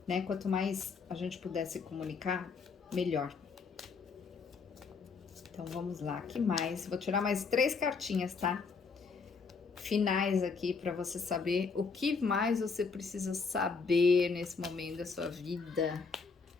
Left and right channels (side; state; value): right; quieter; 5.0 dB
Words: né? Quanto mais a gente puder se comunicar, melhor. Então vamos lá, que mais? Vou tirar mais 3 cartinhas, tá? Finais aqui para você saber o que mais você precisa saber nesse momento da sua vida.